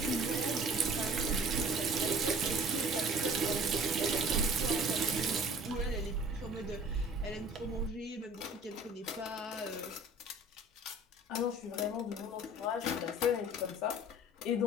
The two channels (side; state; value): both; normal; correlation 0.48